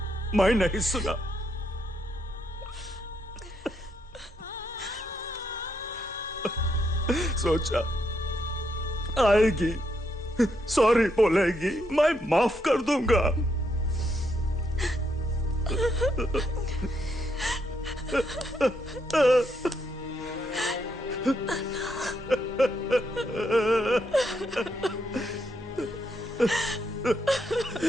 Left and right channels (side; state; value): both; normal; correlation 0.78